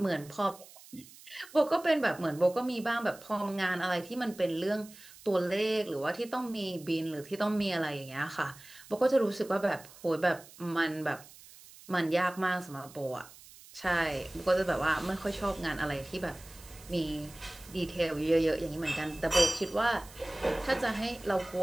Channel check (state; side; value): noise; right; hiss, 20 dB below the sound